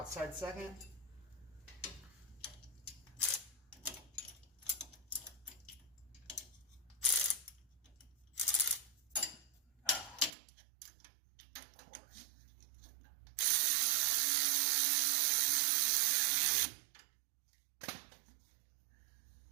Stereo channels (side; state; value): left; drops out; at 10.3 s